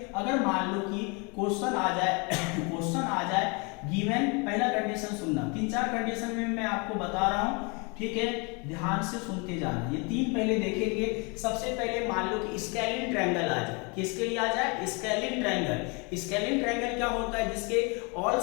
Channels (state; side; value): quieter; right; 31.2 dB